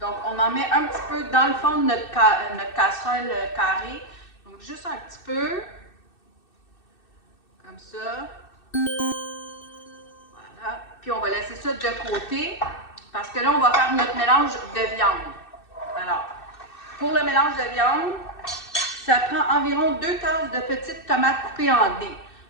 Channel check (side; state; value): right; late; 2.6 ms